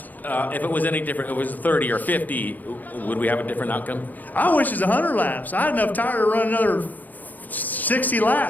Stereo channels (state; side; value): late; right; 0.083 ms